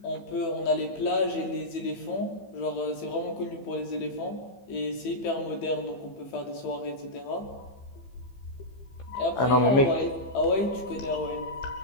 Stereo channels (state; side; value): late; right; 15 ms